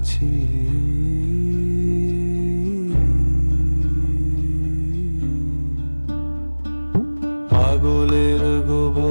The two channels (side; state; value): both; inverted; correlation -1.00